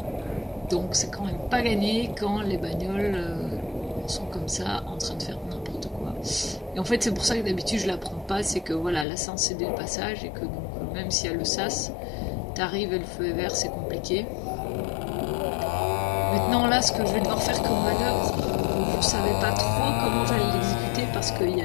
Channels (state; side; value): drops out; right; at 9.1 s